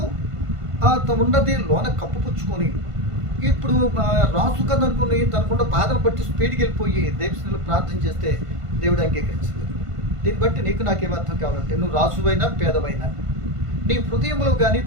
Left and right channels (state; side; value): late; left; 1.5 ms